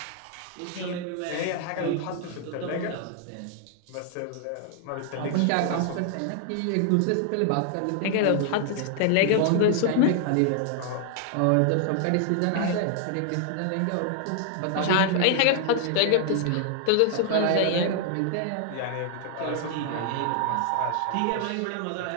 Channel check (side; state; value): both; different; correlation 0.00